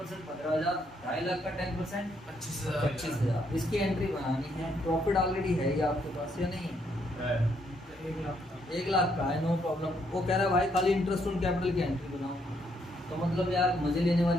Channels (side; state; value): both; normal; correlation 0.73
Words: 15,000, 2.5 लाख का 10% 25,000। 25,000। इसकी एंट्री बनानी है, प्रॉफिट ऑलरेडी है ये आपके पास या नहीं है? 1 लाख का है, नो प्रॉब्लम। वो कह रहा है भाई खाली इंटरेस्ट ऑन कैपिटल की एंट्री बनाओ, तो मतलब यार मजे लेने